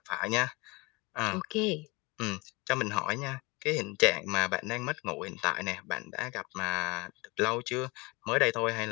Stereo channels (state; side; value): quieter; right; 25.6 dB